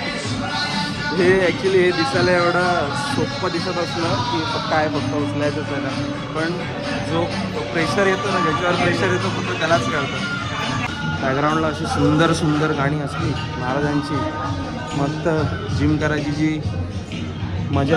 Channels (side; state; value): both; identical; correlation 1.00